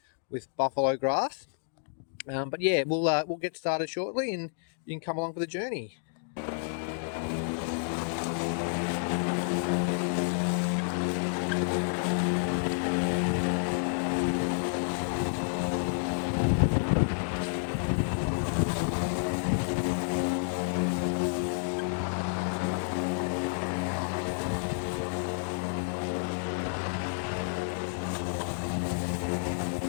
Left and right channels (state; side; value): silent; right; digital silence